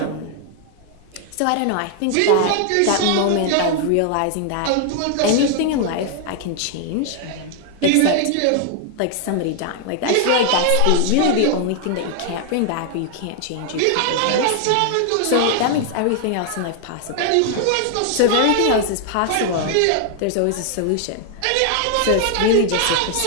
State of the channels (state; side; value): different; both; correlation 0.00